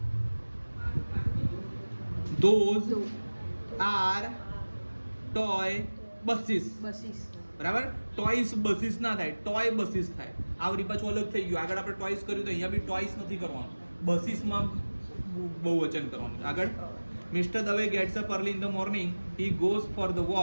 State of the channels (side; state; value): both; inverted; correlation -1.00